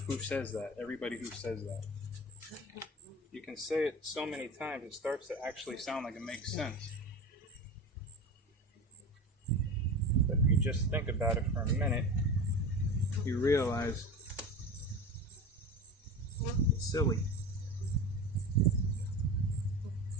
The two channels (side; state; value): both; normal; correlation 0.29